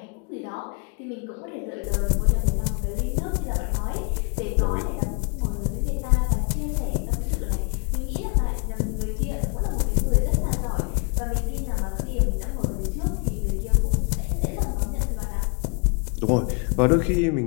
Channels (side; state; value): right; quieter; 35.2 dB